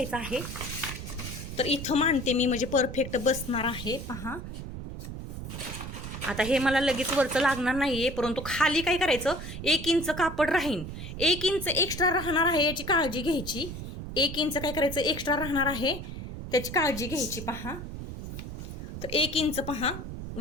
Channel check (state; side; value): noise; right; rumble, 8 dB below the sound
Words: आहे. तर इथं मांडते मी म्हणजे परफेक्ट बसणार आहे. पहा आता हे मला लगेच वरचं लागणार नाहीये परंतु खाली काय करायचं, 1 इंच कापड राहीन, 1 इंच एक्स्ट्रा राहणार आहे याची काळजी घ्यायची. 1 इंच काय करायचं एक्स्ट्रा राहणार आहे त्याची काळजी घ्यायची. पहा तर 1 इंच पहा